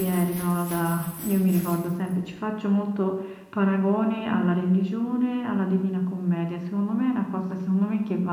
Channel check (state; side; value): identical; both; correlation 1.00